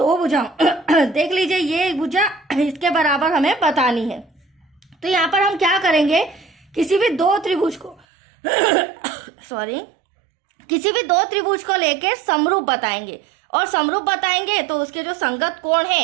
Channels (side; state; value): left; drops out; at 8.1 s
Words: भुजाओं देख लीजिए, ये भुजा इसके बराबर हमें बतानी है। तो यहाँ पर हम क्या करेंगे, किसी भी दो त्रिभुज को किसी भी दो त्रिभुज को लेके समरूप बताएंगे, और समरूप बताएंगे तो उसके जो संगत कोण